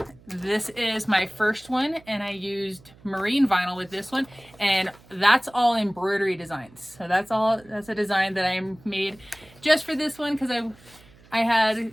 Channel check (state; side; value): noise; right; hum, 26 dB below the sound